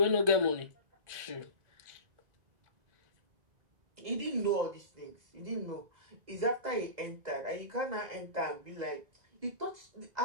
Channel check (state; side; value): late; left; 2.0 ms